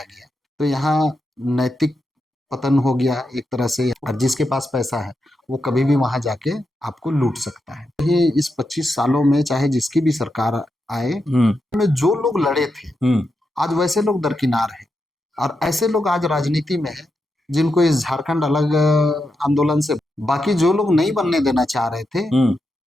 गया। तो यहाँ नैतिक पतन हो गया एक तरह से, और जिसके पास पैसा है वो कभी भी वहां जाके आपको लूट सकता है। ये इस 25 सालों में चाहे जिसकी भी सरकार आए में जो लोग लड़े थे आज वैसे लोग दरकिनार हैं, और ऐसे लोग आज राजनीति में हैं जिनको इस झारखंड अलग आंदोलन से, बाकी जो लोग नहीं बनने देना चाह रहे थे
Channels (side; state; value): both; normal; correlation 0.86